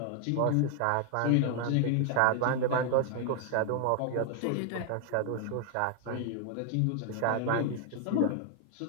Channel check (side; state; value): both; different; correlation 0.00